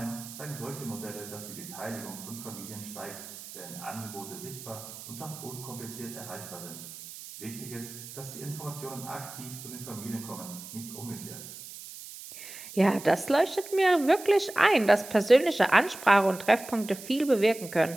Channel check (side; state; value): right; noise; hiss, 13 dB below the sound